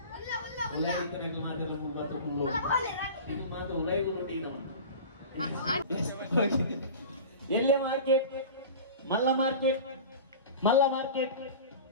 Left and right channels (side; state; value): both; inverted; correlation -0.35